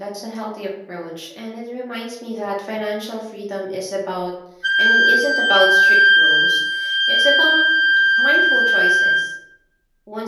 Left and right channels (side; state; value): both; identical; correlation 1.00